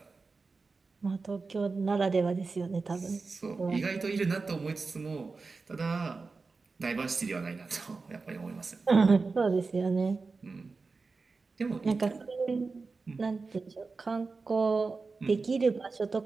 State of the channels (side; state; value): left; quieter; 4.2 dB